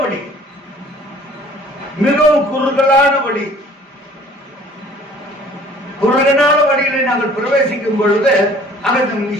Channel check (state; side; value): normal; both; correlation 0.52